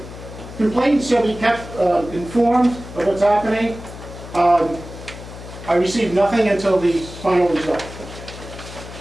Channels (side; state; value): left; noise; hum, 14 dB below the sound